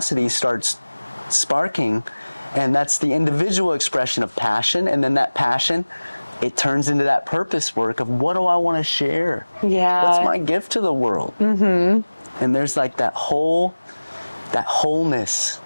starts sparking, and that's the individual expression of passion, and then that passion, it turns into that purpose work of what do I want to share? Yeah. What's my gift to the world? And there's like that wholeness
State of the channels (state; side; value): inverted; both; correlation -1.00